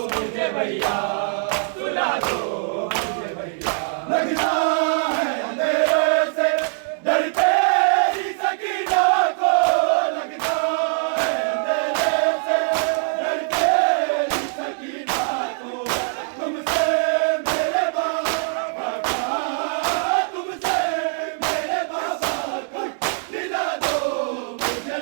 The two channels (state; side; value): silent; left; digital silence